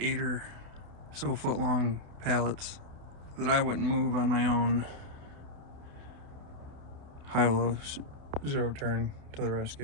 or so foot long pallets that I wouldn't move on my own. Hilo zero turn to the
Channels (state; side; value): late; left; 28 ms